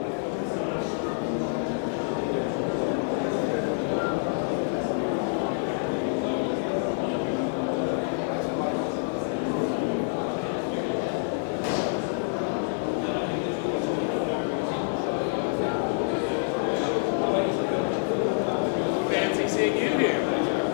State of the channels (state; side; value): silent; right; digital silence